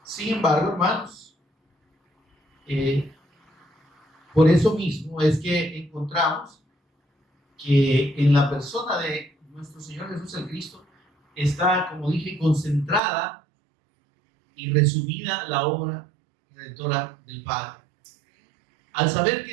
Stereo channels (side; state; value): left; drops out; at 13.0 s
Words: sin embargo, hermanos, por eso mismo es que encontramos que en la persona de nuestro Señor Jesús el Cristo está, como dije, concentrada y resumida la obra redentora del Padre. al saber